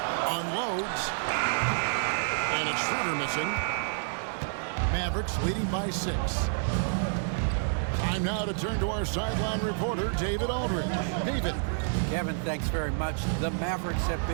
Unloads. And it's Schroeder missing. Mavericks leading by 6. Time now to turn to our sideline reporter, David Aldridge. David. Kevin, thanks very much. The Mavericks have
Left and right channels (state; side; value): silent; left; digital silence